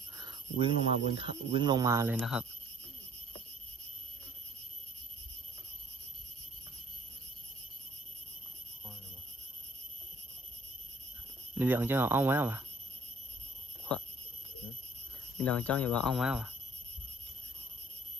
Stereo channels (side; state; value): both; normal; correlation 0.57